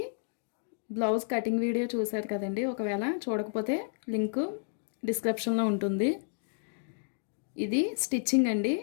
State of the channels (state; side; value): silent; right; digital silence